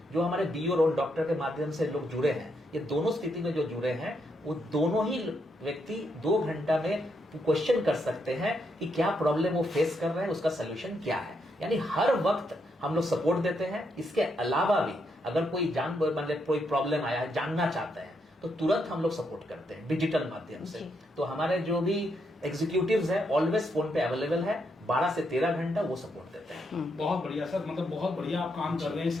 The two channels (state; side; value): normal; both; correlation 0.79